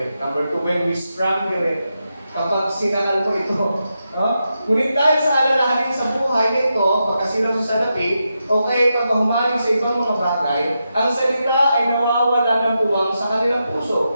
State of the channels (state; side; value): inverted; both; correlation -0.87